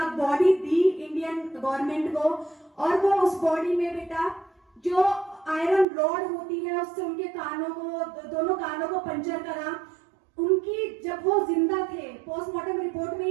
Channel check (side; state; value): left; drops out; at 5.9 s